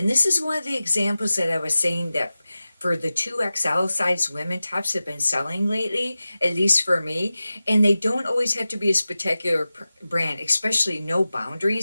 this is one of the examples that I was saying that for the 2XL size women tops have been selling lately, at least for me. And they don't always have to be a spectacular brand, especially no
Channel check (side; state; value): both; inverted; correlation -0.95